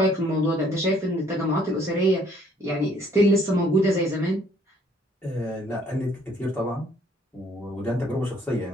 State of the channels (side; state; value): both; normal; correlation 0.62